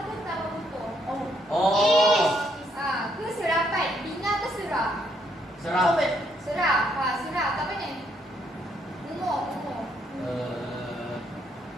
ke tambah tutup? Ke serapan? Bina ke serah? Sarah. Serah. Serah. Tak apa ni? Umur.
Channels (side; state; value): both; normal; correlation 0.72